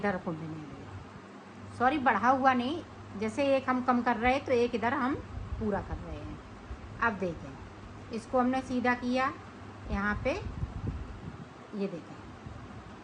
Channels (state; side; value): identical; both; correlation 1.00